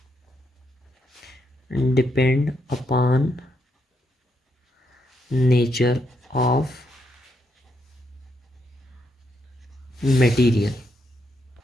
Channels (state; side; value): normal; both; correlation 0.79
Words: depend upon nature of material.